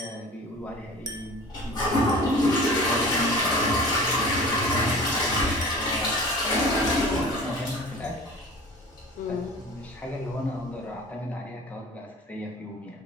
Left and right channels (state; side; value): normal; both; correlation 0.41